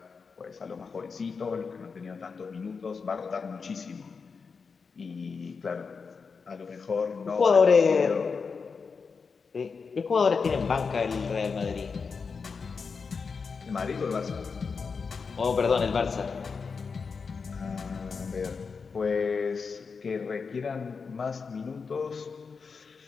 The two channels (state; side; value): quieter; right; 5.2 dB